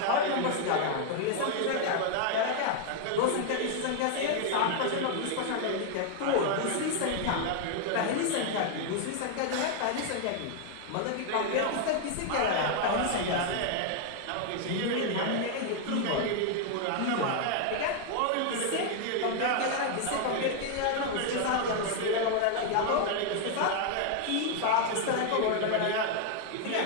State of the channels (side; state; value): both; different; correlation 0.00